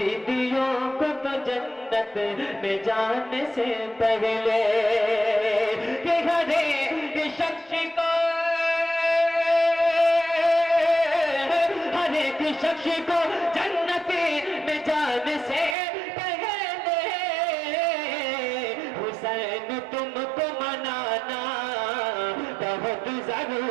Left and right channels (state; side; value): drops out; left; at 15.8 s